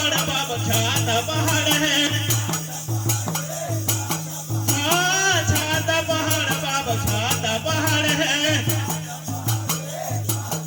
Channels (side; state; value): both; identical; correlation 1.00